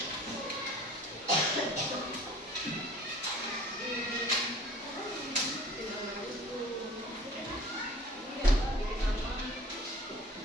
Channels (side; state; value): both; normal; correlation 0.48